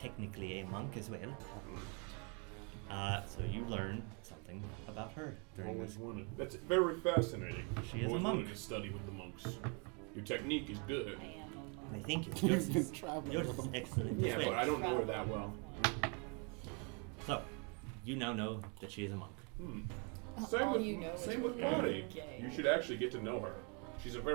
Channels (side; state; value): left; quieter; 35.2 dB